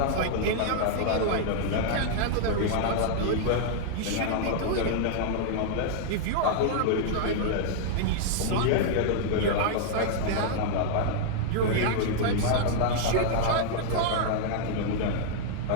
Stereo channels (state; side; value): different; both; correlation -0.01